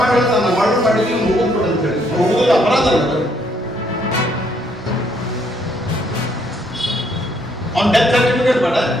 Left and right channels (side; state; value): both; normal; correlation 0.70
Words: ಮಾಡಿ ಹೇಳ್ತಾನ ಮರ್ಡರ್ ಮಾಡಿ ನೀವು ಮುಗಿದ್ ಕೊಡು ಅಂತ ಹೇಳಿ. ಮುಗಿದ ಅಪರಾಧ ಅಲ್ಲ, ಅವ್ನ ಡೆತ್ ಸರ್ಟಿಫಿಕೇಟ್ ಬೇಡ.